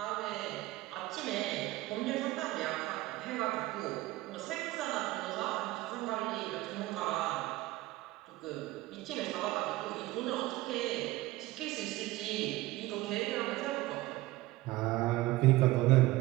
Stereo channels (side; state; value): left; quieter; 18.3 dB